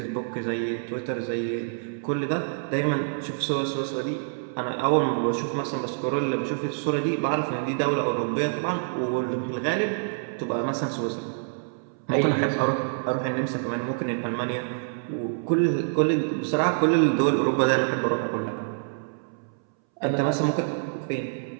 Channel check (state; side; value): silent; left; 61 dB below the other